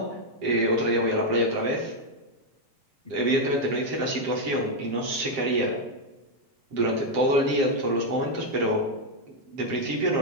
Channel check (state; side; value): late; left; 7.5 ms